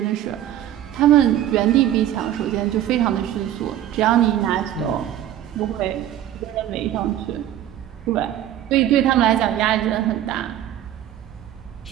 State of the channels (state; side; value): quieter; left; 11.9 dB